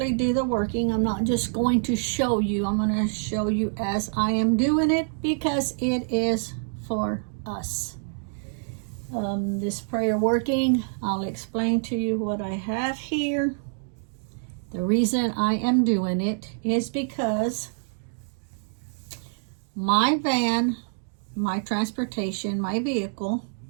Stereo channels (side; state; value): left; silent; digital silence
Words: do the working. I'm not just going to show you. I'm going to show you as I am doing it because it is for us. This prayer working, I'll explain to you what I have here. The reason I am doing it is because my van, my transportation, my vehicle